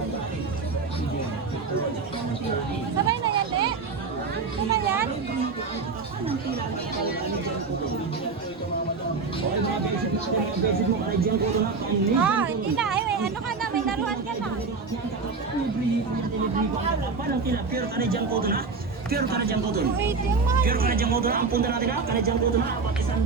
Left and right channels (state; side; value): quieter; left; 4.5 dB